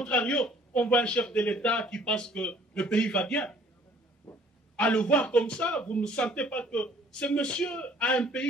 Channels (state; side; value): normal; both; correlation 0.56